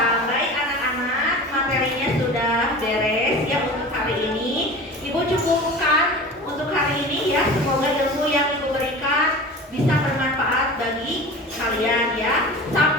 Baik anak-anak, materinya sudah beres ya untuk hari ini. Ibu cukupkan untuk hari ini ya. Semoga ilmu yang Ibu berikan bisa bermanfaat bagi kalian ya.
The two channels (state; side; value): normal; both; correlation 0.36